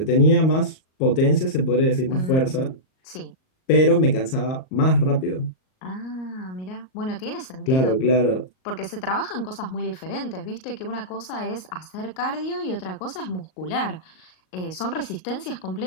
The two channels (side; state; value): right; late; 38 ms